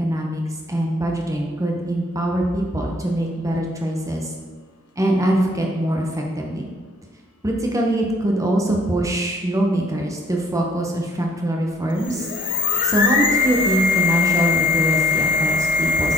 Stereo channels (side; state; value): both; normal; correlation 0.63